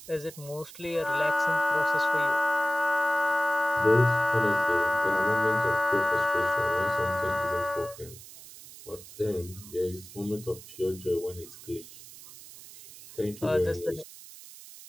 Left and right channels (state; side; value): noise; right; hiss, 17 dB below the sound